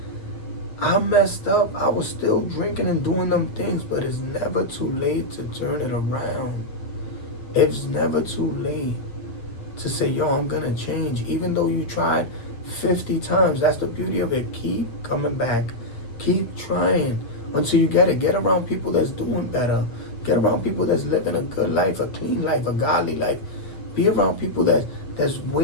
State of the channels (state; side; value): late; right; 8.6 ms